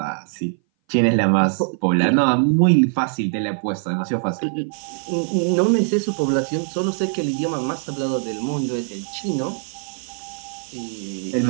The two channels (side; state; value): left; silent; 59 dB below the other